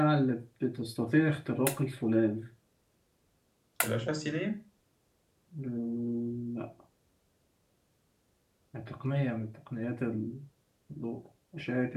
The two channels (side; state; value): both; identical; correlation 1.00